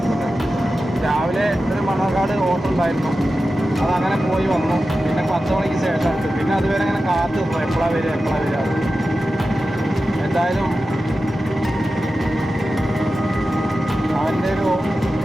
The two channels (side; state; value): both; normal; correlation 0.93